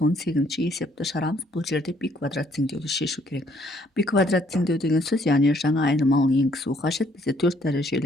есепті шығарамыз. Бұл жерде π квадрат теңдеуді шешу керек. π квадрат теңдеу деген сөз, яғни жаңа айнымалыны енгізу қажет. Бізде 4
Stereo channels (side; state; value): both; normal; correlation 0.66